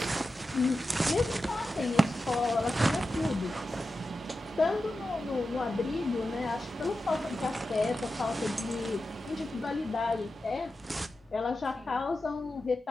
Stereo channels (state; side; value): normal; both; correlation 0.91